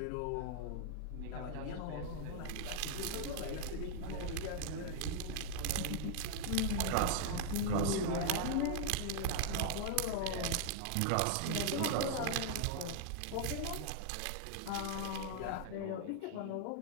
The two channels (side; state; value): both; different; correlation 0.00